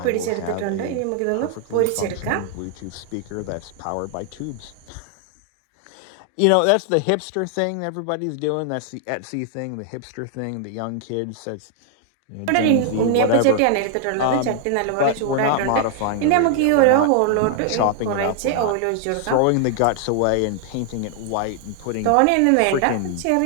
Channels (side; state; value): both; different; correlation 0.00